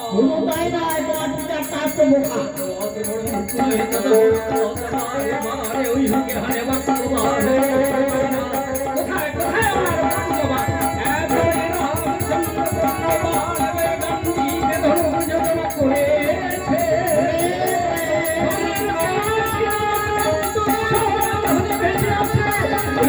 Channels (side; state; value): both; identical; correlation 1.00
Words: কোনো তাই না, তোমার পিতার তার তো বোকা। ওই হুকে হারে বাক্য কোথায় কোথায় আমার বাবা